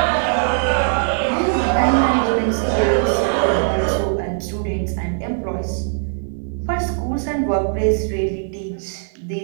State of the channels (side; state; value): left; silent; digital silence